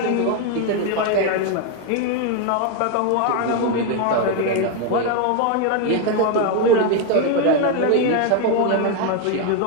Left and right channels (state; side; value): different; both; correlation 0.01